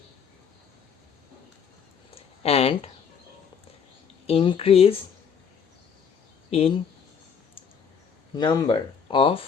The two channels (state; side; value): quieter; right; 6.9 dB